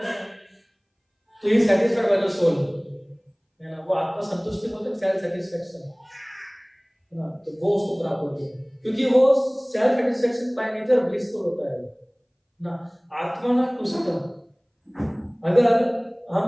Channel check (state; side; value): identical; both; correlation 1.00